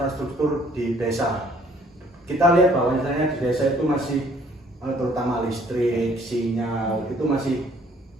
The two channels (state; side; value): normal; both; correlation 0.60